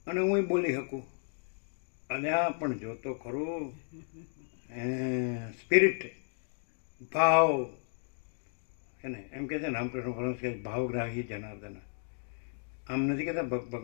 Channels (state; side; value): silent; right; 55 dB below the other